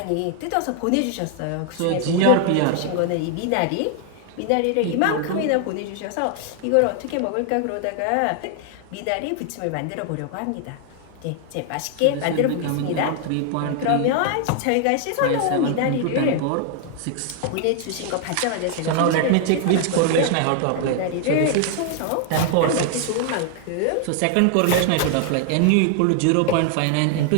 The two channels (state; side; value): different; both; correlation 0.00